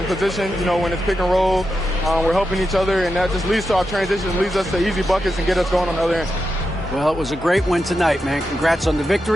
position. You know, when it's pick and roll, we're helping each other, and that just leads to our transition, leads us to easy buckets and get us going on the other end. Well, it was a great win tonight, man. Congrats on the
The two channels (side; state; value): both; normal; correlation 0.88